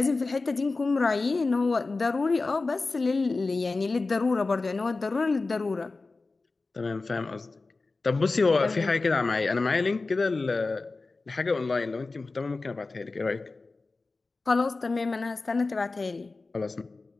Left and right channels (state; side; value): quieter; right; 3.7 dB